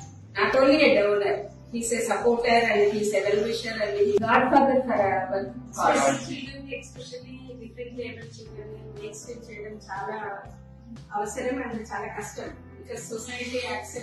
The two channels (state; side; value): identical; both; correlation 1.00